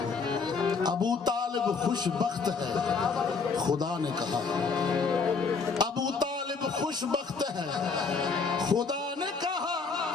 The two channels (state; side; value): quieter; right; 4.9 dB